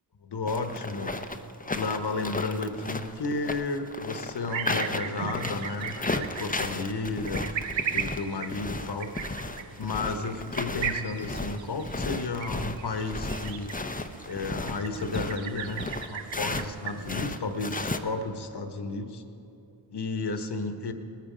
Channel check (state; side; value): normal; both; correlation 0.08